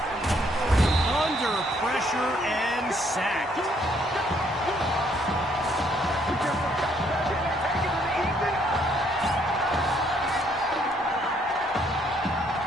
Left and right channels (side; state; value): both; normal; correlation 0.68